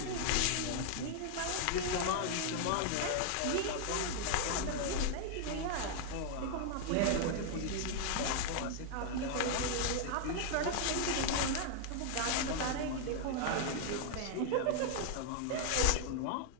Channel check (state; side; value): different; both; correlation 0.00